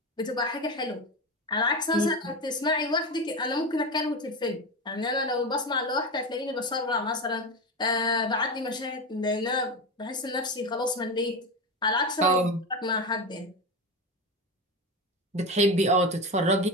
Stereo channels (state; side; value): normal; both; correlation 0.20